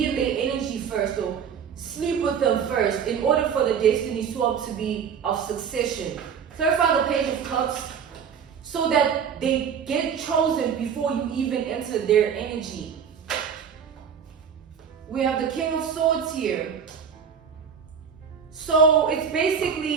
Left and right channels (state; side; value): quieter; left; 7.2 dB